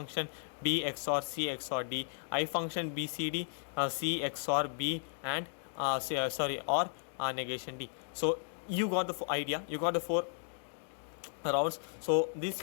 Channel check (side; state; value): right; silent; digital silence